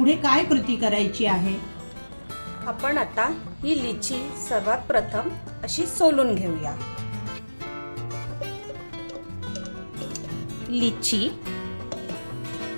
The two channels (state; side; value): inverted; both; correlation -1.00